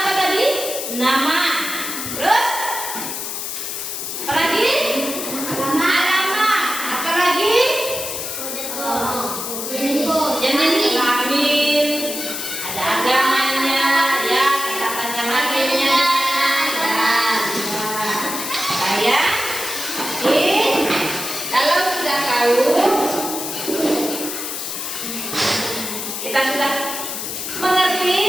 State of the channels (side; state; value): left; noise; hiss, 5 dB below the sound